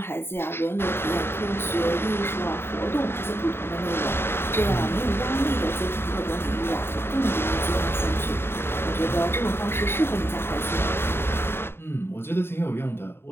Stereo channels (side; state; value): right; late; 0.11 ms